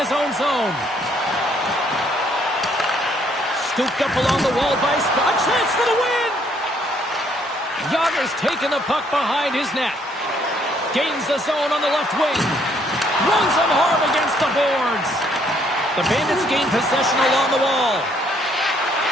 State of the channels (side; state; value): both; normal; correlation 0.67